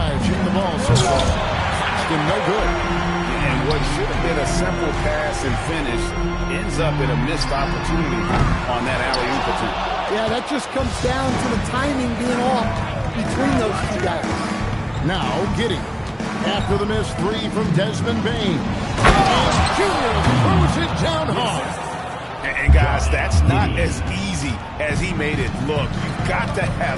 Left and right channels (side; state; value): both; identical; correlation 1.00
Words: Shooting the ball so far. Claxton no good. And what should have been a simple pass and finish ends up in a missed opportunity on that alley-oop attempt. Yeah, that just comes down to the timing being off between those two guys. Now, Giddy. After the missed 3 from Desmond Bane. And Junior throws it down hard. And guys, that's not as easy as he made it look. You've got to have